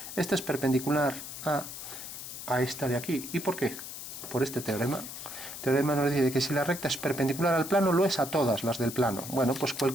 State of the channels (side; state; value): left; noise; hiss, 10 dB below the sound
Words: esta es perpendicular a esta de aquí. ¿Y por qué? Por este teorema. El teorema nos dice que si la recta es perpendicular al plano, lo es a todas las del plano. Bueno, pues